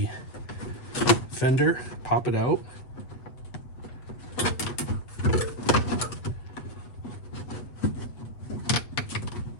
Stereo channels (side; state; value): right; late; 8.0 ms